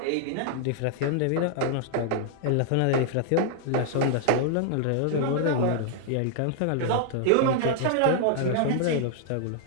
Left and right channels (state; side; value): different; both; correlation -0.01